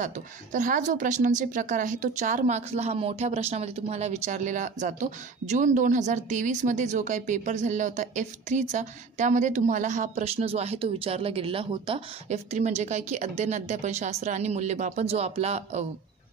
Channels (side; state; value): left; quieter; 4.9 dB